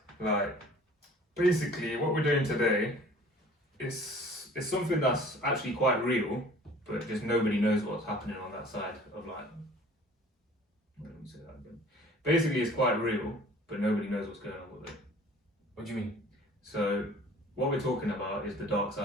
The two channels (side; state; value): both; normal; correlation 0.49